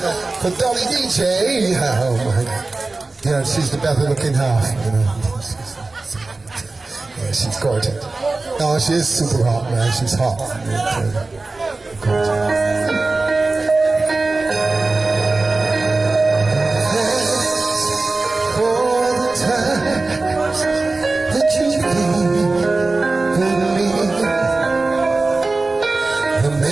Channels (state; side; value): quieter; left; 3.4 dB